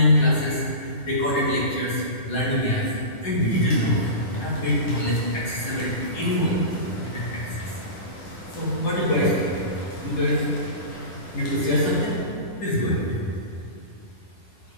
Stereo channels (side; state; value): right; late; 10 ms